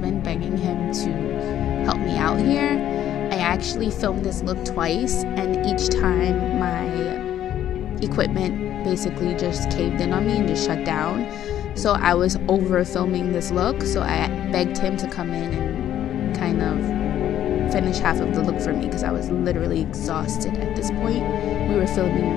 begging him to help me out here. I actually filmed this look twice, and each time my equipment basically just caved in on me and just shut down. So I was over filming this look, so I begged him to come in and kind of finish half of the look for me because I was literally exhausted at this point. We were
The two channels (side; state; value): right; quieter; 11.3 dB